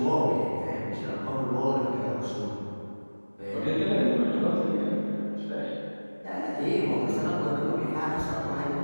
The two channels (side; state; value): both; inverted; correlation -1.00